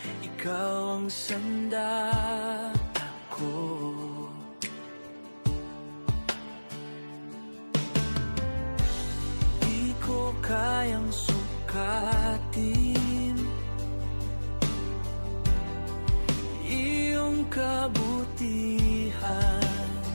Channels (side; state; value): both; inverted; correlation -1.00